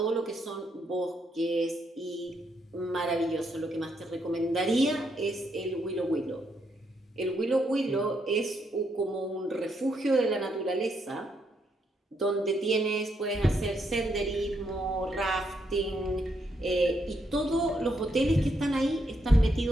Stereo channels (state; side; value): normal; both; correlation 0.77